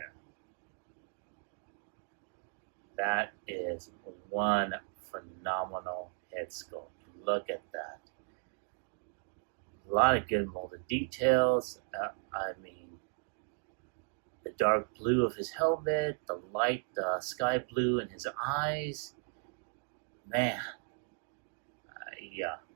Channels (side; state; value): left; silent; 54 dB below the other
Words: That is one phenomenal head sculpt. Look at that. A lot of good molded details. I mean, the dark blue of his helmet, the light sky blue in his eyes. Man,